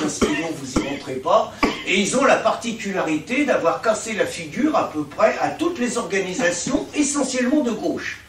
kg, vous n'y rentrez pas. Et ils ont la particularité d'avoir cassé la figure à peu près à toutes les organisations, essentiellement de gauche.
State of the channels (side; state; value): both; identical; correlation 1.00